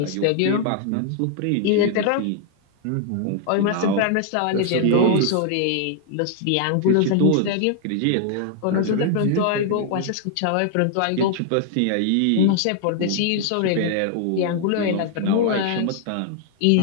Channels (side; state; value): both; different; correlation 0.00